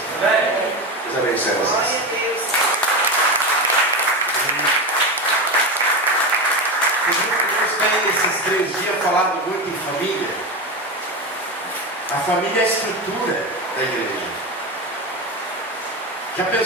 Deus abençoe vocês. Deus tem esses 3 dias falado muito em família. A família é a estrutura da igreja. Já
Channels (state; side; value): normal; both; correlation 0.19